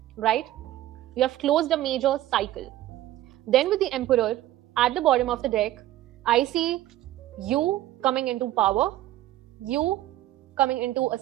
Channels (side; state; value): left; quieter; 14.4 dB